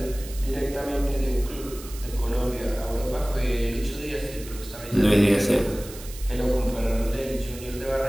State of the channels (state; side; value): noise; right; hiss, 15 dB below the sound